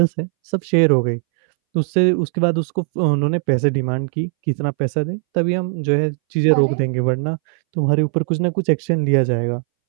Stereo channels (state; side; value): silent; left; 64 dB below the other